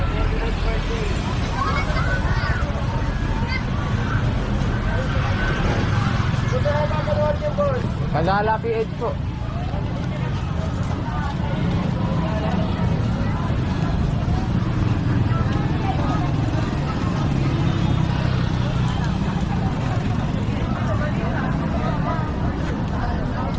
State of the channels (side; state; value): both; identical; correlation 1.00